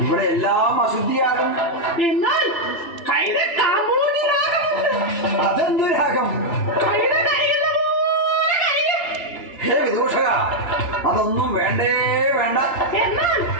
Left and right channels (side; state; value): right; late; 2.9 ms